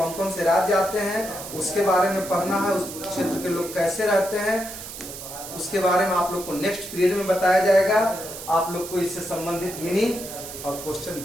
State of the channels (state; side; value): noise; right; hiss, 11 dB below the sound